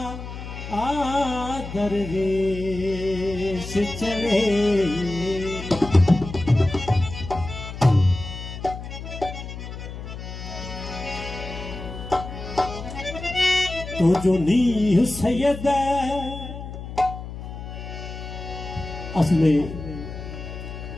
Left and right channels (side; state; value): left; noise; hum, 10 dB below the sound